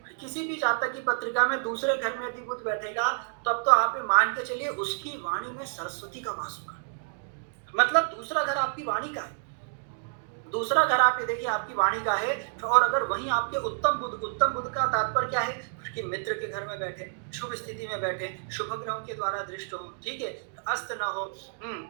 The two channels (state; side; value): silent; left; digital silence